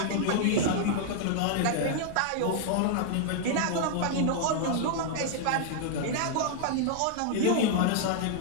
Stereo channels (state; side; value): different; both; correlation -0.01